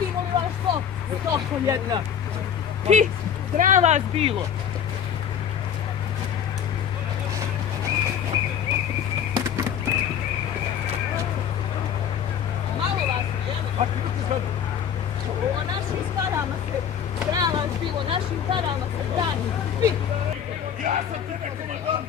li vas to? Stoko jedna. Ti, sram vas bilo. Malo vas je, jel? O našim parama se, sram vas bilo, našim parama se brani. Svi. Ja sam tebe komandant,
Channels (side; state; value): right; quieter; 8.4 dB